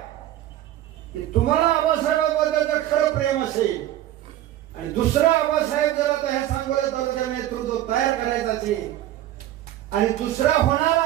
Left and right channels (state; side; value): quieter; left; 13.4 dB